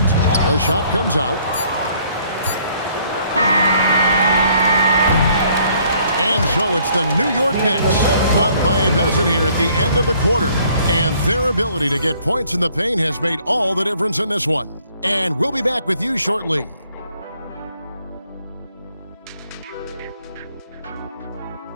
the shot comes out. And so it's the New York Knicks up by a dozen here at the end of the quarter. And their ability to get points in the paint has made all the difference in this one. And we'll be back with you shortly.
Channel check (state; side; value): inverted; both; correlation -0.63